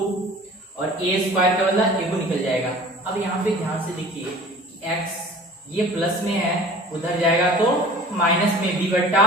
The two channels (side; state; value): both; normal; correlation 0.44